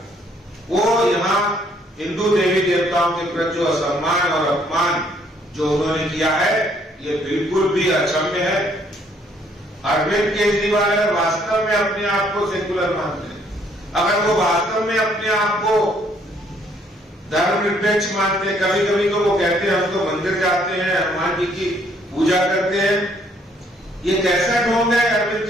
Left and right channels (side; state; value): both; normal; correlation 0.66